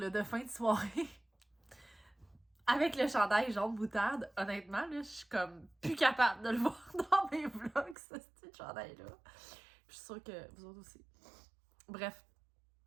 de fin de soirée. Avec le chandail jaune moutarde, honnêtement, là, je suis comme plus capable de le voir dans mes vlogs, ce petit chandail-là. Je suis sûre que vous autres aussi. Bref,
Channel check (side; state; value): left; drops out; at 8.0 s